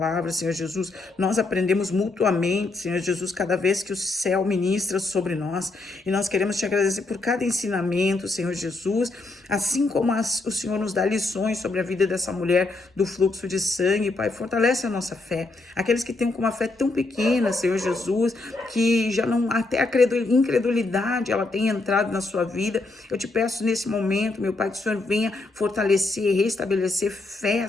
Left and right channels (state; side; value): quieter; right; 3.2 dB